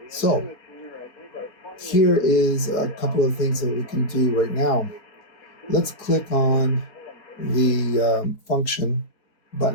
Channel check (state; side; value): late; right; 4.3 ms